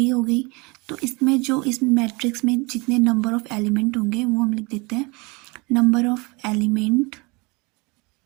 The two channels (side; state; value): left; quieter; 27.2 dB